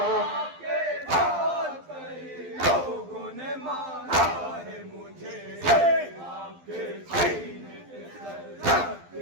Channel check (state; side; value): late; left; 12 ms